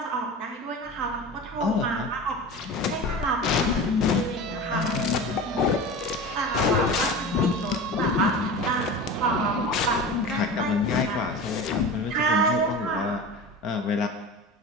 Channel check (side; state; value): both; normal; correlation 0.32